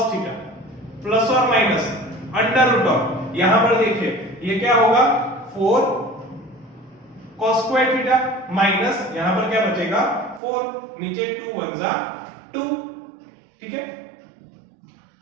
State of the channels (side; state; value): left; drops out; at 10.4 s